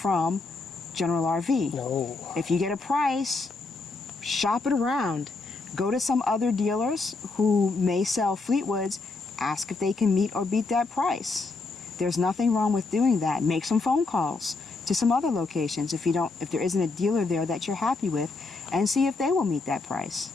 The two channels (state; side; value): quieter; right; 3.7 dB